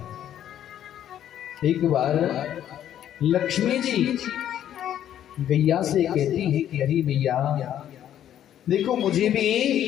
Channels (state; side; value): quieter; right; 10.8 dB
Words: एक बार लक्ष्मी जी गैया से कहती है कि अरे भैया देखो, मुझे